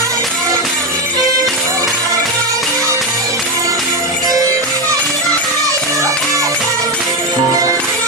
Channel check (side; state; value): both; normal; correlation 0.10